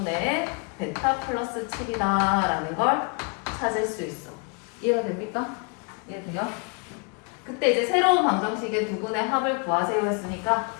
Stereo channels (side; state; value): right; quieter; 34.8 dB